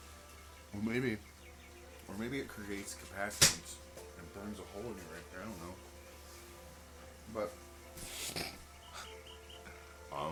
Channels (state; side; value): identical; both; correlation 1.00